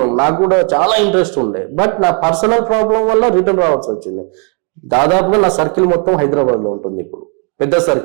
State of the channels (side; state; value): left; quieter; 36.8 dB